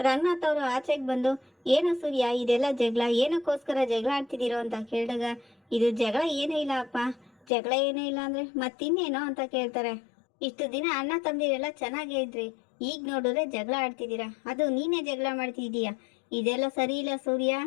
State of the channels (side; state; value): right; drops out; at 7.3 s